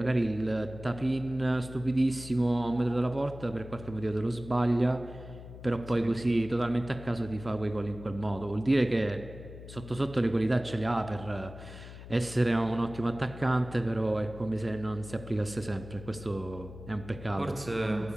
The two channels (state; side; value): noise; left; hum, 14 dB below the sound